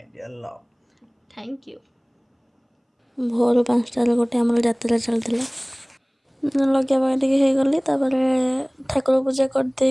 dear love. Thank you. भोर 5टार गोटे आमर यात्रा चलता लगे टे गली ठाकुर पूजा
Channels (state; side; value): identical; both; correlation 1.00